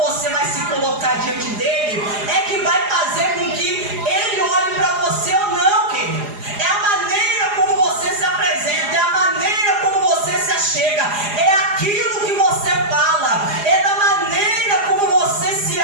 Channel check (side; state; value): left; late; 4.9 ms